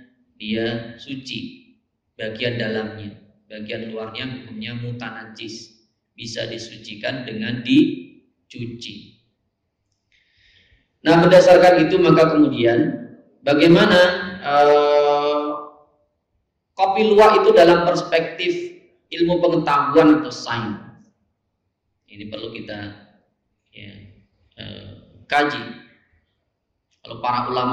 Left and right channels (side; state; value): both; identical; correlation 1.00